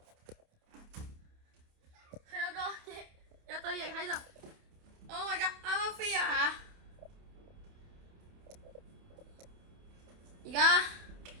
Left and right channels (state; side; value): late; left; 28 ms